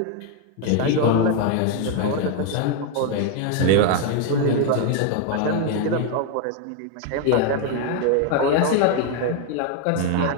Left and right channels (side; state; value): both; different; correlation 0.01